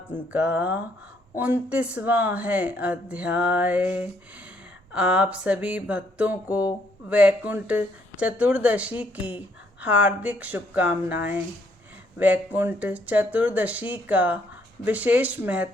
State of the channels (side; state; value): both; normal; correlation 0.69